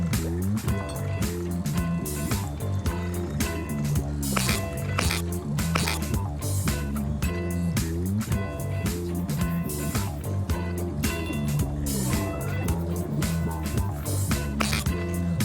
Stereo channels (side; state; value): both; identical; correlation 1.00